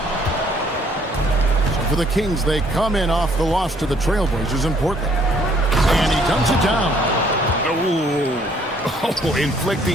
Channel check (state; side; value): normal; both; correlation 0.63